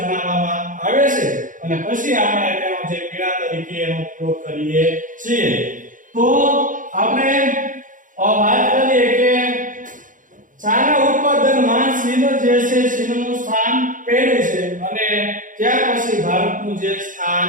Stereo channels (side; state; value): left; late; 0.38 ms